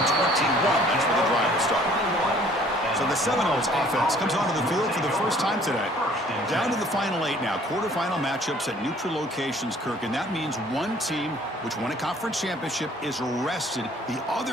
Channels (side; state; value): both; normal; correlation 0.56